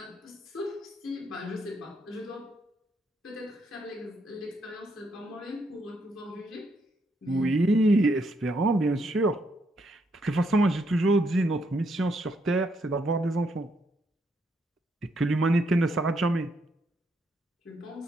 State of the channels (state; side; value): normal; both; correlation 0.75